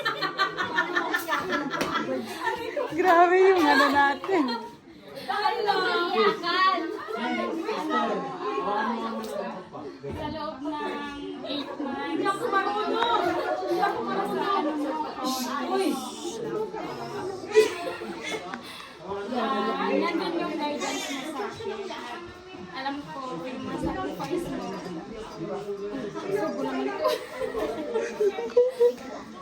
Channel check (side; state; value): both; identical; correlation 1.00